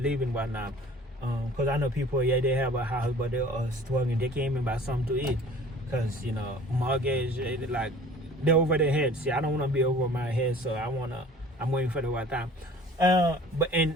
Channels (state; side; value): normal; both; correlation 0.47